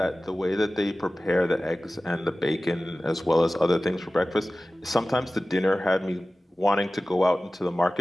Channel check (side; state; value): both; normal; correlation 0.97